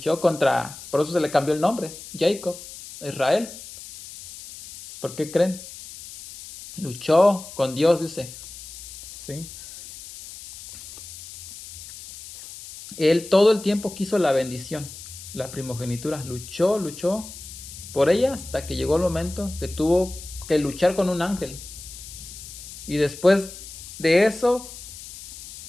contra, por eso se le cambió el nombre, Jacob, Israel. ¿Por qué creen? Luchó con Dios, dice. ¿Sí? Él todo el tiempo quiso la bendición, la primogenitura. Luchó por ella hasta que llegó el momento que tuvo que luchar con un ángel. Y después de eso,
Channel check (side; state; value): left; noise; hiss, 14 dB below the sound